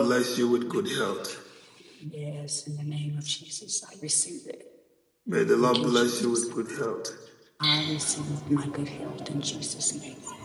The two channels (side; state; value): both; identical; correlation 1.00